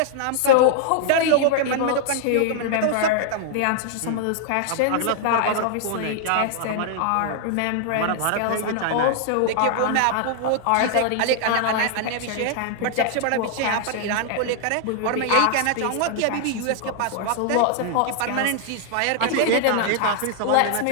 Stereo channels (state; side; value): different; both; correlation -0.01